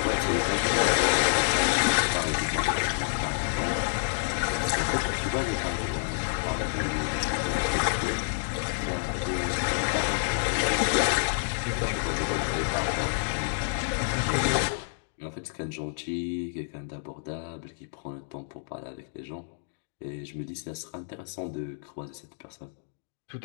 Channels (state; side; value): silent; right; digital silence